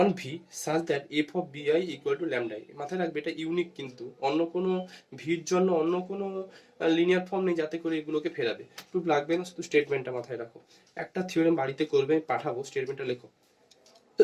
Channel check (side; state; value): both; identical; correlation 1.00